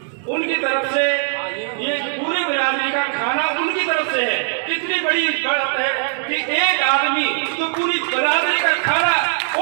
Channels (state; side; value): silent; left; 60 dB below the other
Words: उनकी तरफ से ये पूरी बिरादरी का खाना उनकी तरफ से है। कितनी बड़ी बात है कि एक आदमी तो पूरी बिरादरी का खाना